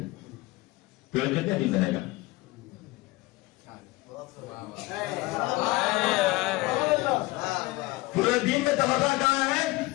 پیڑ کتنے دن رہے گا؟ پورے دن میں تبادلہ کہاں ہے؟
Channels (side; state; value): right; quieter; 21.2 dB